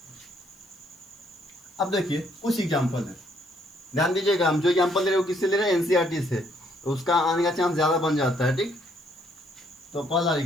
अब देखिए कुछ एग्जाम्पल है, ध्यान दीजिएगा। हम जो एग्जाम्पल ले रहे हो किससे ले रहे हैं, NCERT से, तो उसका आने का चांस ज़्यादा बन जाता है, ठीक। तो पहला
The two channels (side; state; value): left; noise; hiss, 30 dB below the sound